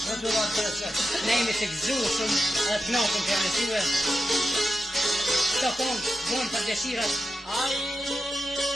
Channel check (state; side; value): normal; both; correlation 0.90